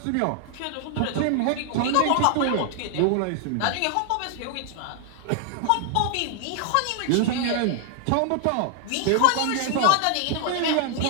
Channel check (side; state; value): both; different; correlation 0.00